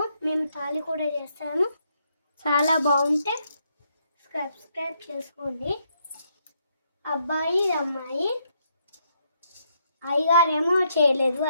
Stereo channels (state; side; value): inverted; both; correlation -0.75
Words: మేము తాళి కూడా చేస్తాము. చాలా బాగుంటే సబ్స్క్రైబ్ చేసుకోండి. అబ్బాయి అమ్మాయి. అయ్యగారేమో చేయలేదు,